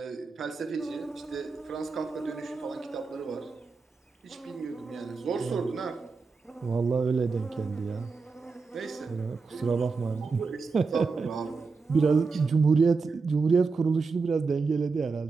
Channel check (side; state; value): left; quieter; 4.5 dB